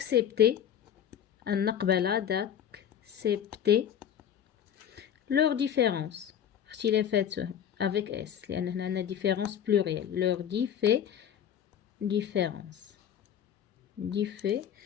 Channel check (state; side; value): quieter; right; 9.2 dB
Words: أن نقبل d'accepter leur différence اختلافات avec S لأن هنا عندنا différence pluriel leur différence